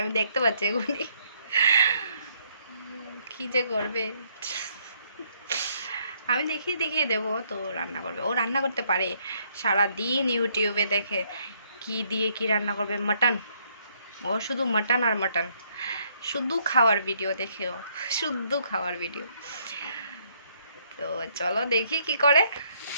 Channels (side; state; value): both; inverted; correlation -0.70